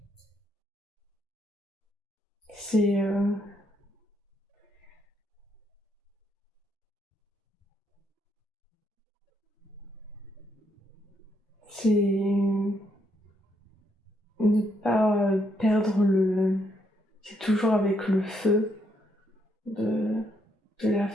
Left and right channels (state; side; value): normal; both; correlation 0.75